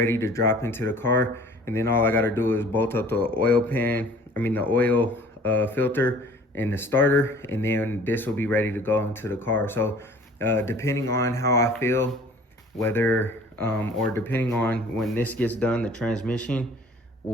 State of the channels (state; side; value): normal; both; correlation 0.50